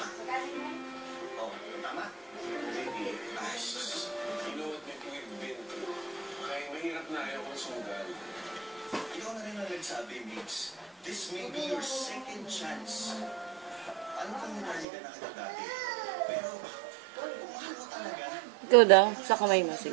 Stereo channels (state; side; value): drops out; left; at 14.9 s